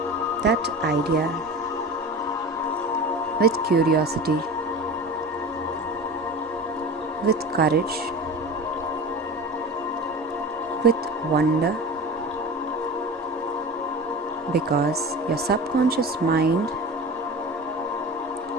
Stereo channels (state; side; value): normal; both; correlation 0.32